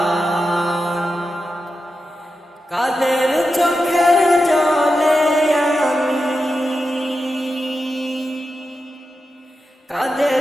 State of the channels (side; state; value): both; normal; correlation 0.90